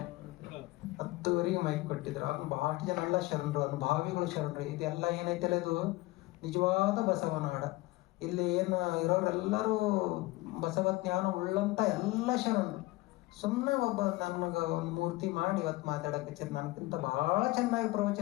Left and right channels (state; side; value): quieter; right; 20.4 dB